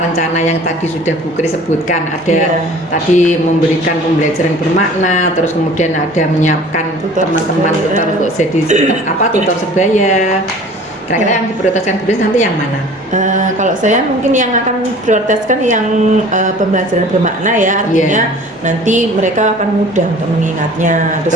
yang tadi sudah Bu Kris sebutkan, ada tadi memberikan pembelajaran bermakna, terus kemudian ada menyiapkan teman-teman tutor untuk jadi tutor sebaya. Kira-kira yang diprioritaskan Bu Kris nanti yang mana? Kalau saya mungkin yang akan prioritaskan yang pembelajaran bermakna ya, artinya nanti mereka akan mudah untuk mengingatnya.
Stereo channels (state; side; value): normal; both; correlation 0.46